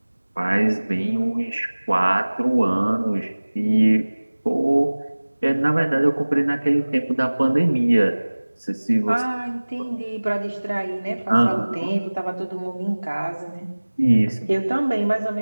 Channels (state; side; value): inverted; both; correlation -1.00